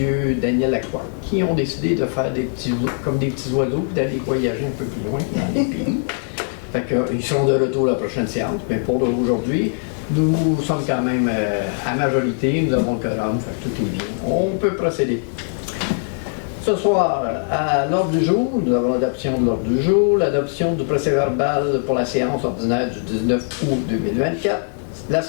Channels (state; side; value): silent; right; 56 dB below the other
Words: Daniel Lacroix, qui ont décidé de faire comme des petits oiseaux et d'aller voyager un peu plus loin dans les pays. Fait qu'ils seront de retour à la prochaine séance. Mais pour aujourd'hui, nous sommes quand même à majorité, nous avons le quorum, fait que tout est bien. On peut procéder. Ce soir, à l'ordre du jour, nous avons l'adoption de l'ordre du jour, l'adoption du procès-verbal pour la séance ordinaire du 19 août 2024, la